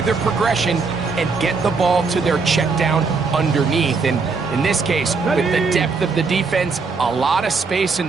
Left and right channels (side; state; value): left; quieter; 4.6 dB